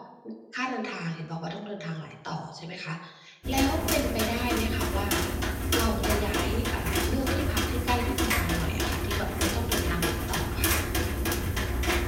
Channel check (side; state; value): both; identical; correlation 1.00